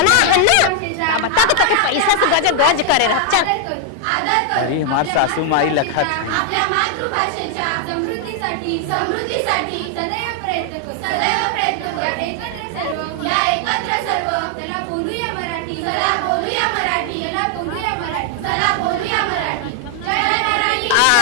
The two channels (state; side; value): different; both; correlation 0.00